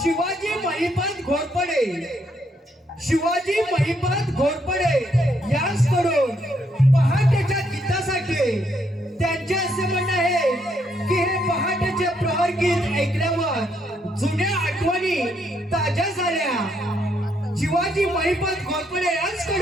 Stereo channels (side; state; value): both; normal; correlation 0.74